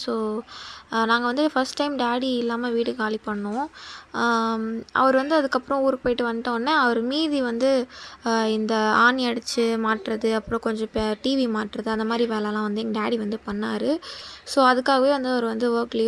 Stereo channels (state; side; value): identical; both; correlation 1.00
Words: ஸோ நாங்கள் வந்து ஃபஸ்ட் டைம் டாடி இல்லாமல் வீடு காலி பண்ணோம். அவர் வந்து அதுக்கப்புறம் ஊருக்கு போயிட்டு வந்துட்டோடனே அவர் மீதி வந்து இந்த ஆணி அடித்து மாட்டுறது, அப்புறம் கொஞ்சம் டிவி மாட்டுறது, அந்த மாதிரி வேலைலாம் வந்து எங்கள் டாடி வந்து பண்ணார். ஸோ அதுக்காகவே வந்து அவர் வந்து ஒர்க்